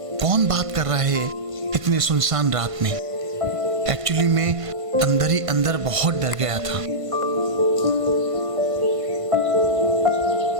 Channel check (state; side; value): late; left; 1.5 ms